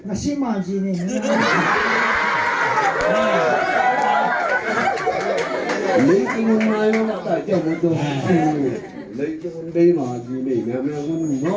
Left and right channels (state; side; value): identical; both; correlation 1.00